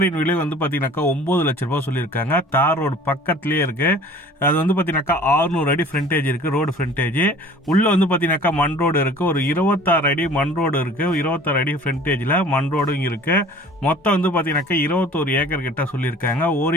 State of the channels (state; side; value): normal; both; correlation 0.48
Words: விலை பார்த்தீங்கன்னாக்கா 9 லட்ச ரூபா சொல்லியிருக்காங்க. தார் ரோடு பக்கத்துலேயே இருக்கு. அது பார்த்தீங்கன்னாக்கா 600 அடி ஃப்ரண்டேஜ் இருக்கு, ரோடு ஃப்ரண்டேஜ். உள்ள பார்த்தீங்கன்னாக்கா மண் ரோடு இருக்கு, ஒரு 26 அடி மண் ரோடு இருக்கு, 26 அடி ஃப்ரண்டேஜில் மண் ரோடும் இருக்கு. மொத்தம் பார்த்தீங்கன்னாக்கா 21 ஏக்கர் கிட்ட சொல்லியிருக்காங்க.